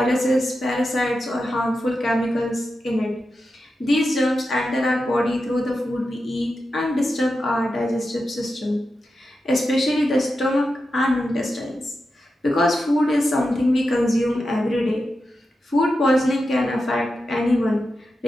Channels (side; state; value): both; normal; correlation 0.90